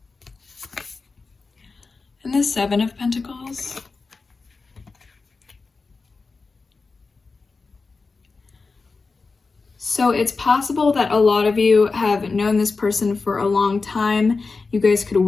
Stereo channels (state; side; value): quieter; right; 4.2 dB